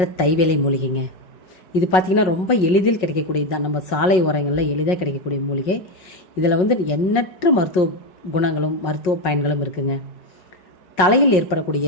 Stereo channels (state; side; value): late; right; 5.4 ms